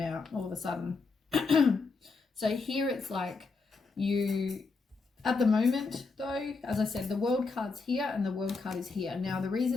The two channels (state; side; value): quieter; right; 4.2 dB